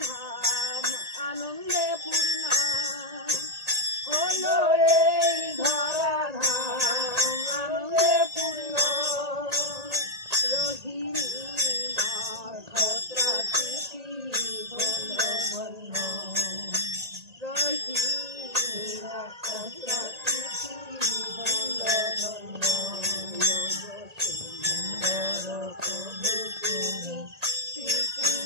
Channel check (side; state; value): left; late; 1.8 ms